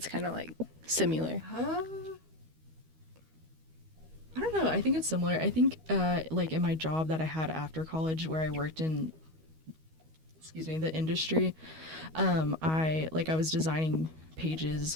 kind of like similar? I don't know. I think it's similar. I think like in my job that I had after college, where I worked in, the industry, I was designing pages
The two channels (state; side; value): late; left; 13 ms